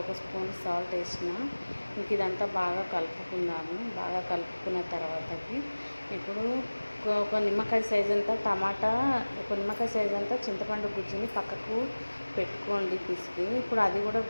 స్పూన్ సాల్ట్ వేసిన. ఇంక ఇదంతా బాగా కలుపుకుందాము. బాగా కలుపుకున్న తర్వాతకి ఇప్పుడు ఒక నిమ్మకాయ సైజ్ అంతా టమాటా, ఒక నిమ్మకాయ సైజ్ అంతా చింతపండు గుజ్జుని పక్కకు పెట్టుకోండి పిసికి. ఇప్పుడు అది కూడా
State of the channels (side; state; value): both; inverted; correlation -1.00